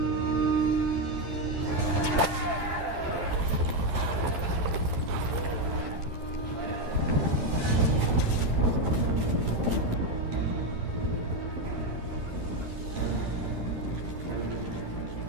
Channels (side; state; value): left; late; 11 ms